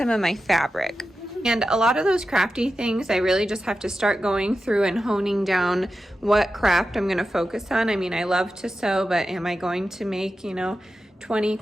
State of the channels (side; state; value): both; normal; correlation 0.91